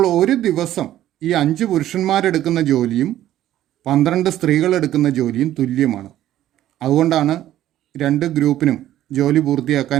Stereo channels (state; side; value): quieter; left; 13.0 dB